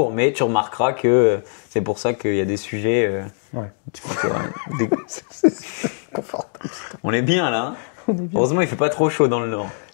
mais tu remarqueras que c'est pour ça qu'il y a des sujets. On est bien là. Hein. Heureusement, il fait pas trop chaud dans le Nord.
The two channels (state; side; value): silent; right; digital silence